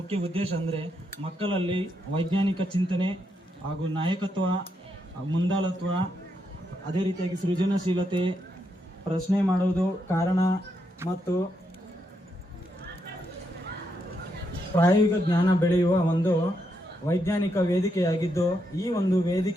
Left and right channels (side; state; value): both; normal; correlation 0.80